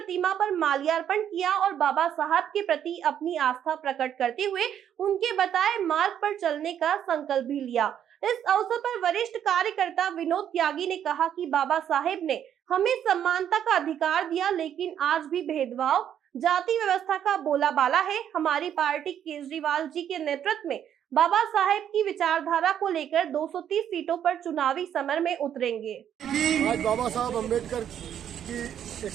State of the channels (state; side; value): quieter; left; 9.6 dB